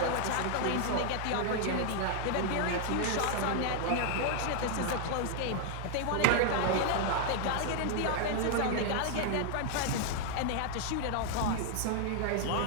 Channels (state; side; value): different; both; correlation 0.00